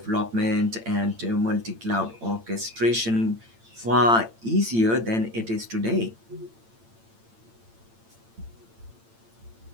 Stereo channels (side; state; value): left; late; 8.8 ms